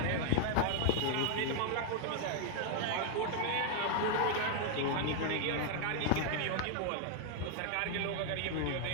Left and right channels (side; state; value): both; different; correlation 0.00